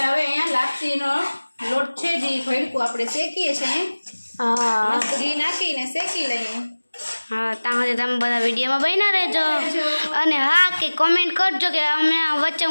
હવે અહીંયા લાપસીનો લોટ છે જે ભડકું આપણે શેકીએ છીએ મસ્ત ઘી નાખીને શેકી લઈએ હા ત્યાં સુધી તમે બધા વિડીયોમાં બન્યા રહેજો અને હા કે કોમેન્ટ કરજો કે અમે વચ્ચે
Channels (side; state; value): both; inverted; correlation -1.00